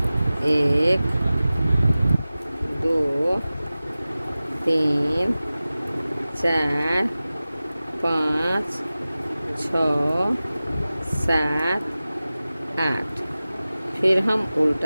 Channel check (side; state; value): both; inverted; correlation -0.97